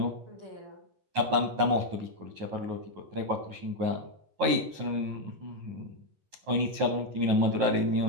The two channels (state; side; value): late; left; 10 ms